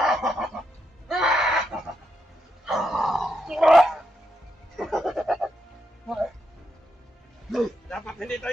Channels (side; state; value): both; normal; correlation 0.82